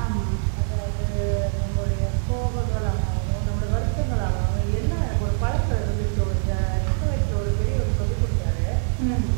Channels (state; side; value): silent; left; digital silence